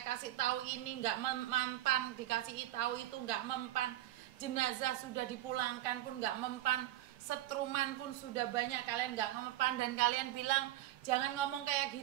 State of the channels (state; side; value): quieter; left; 14.6 dB